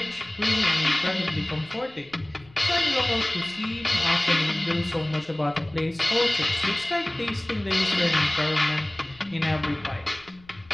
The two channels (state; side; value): noise; left; rumble, 26 dB below the sound